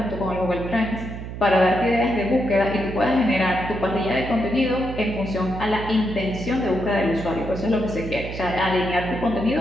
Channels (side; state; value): right; noise; hum, 8 dB below the sound